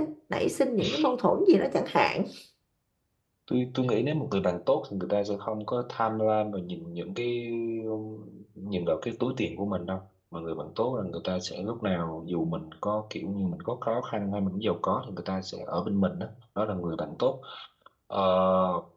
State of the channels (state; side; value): identical; both; correlation 1.00